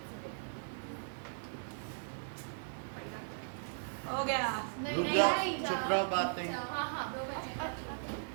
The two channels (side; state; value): left; silent; 53 dB below the other